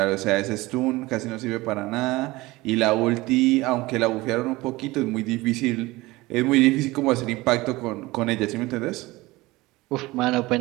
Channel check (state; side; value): quieter; left; 20.5 dB